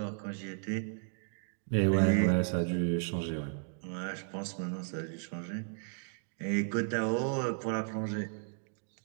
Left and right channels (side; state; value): left; silent; 55 dB below the other